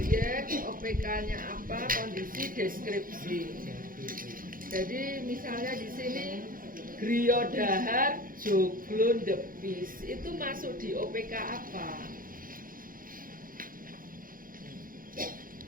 OPK-nya apa, kondisi, deskripsi. Jadi misalnya di sini Griya Dahar Joglon Depis itu masuk di OPK apa?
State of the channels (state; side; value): late; left; 0.41 ms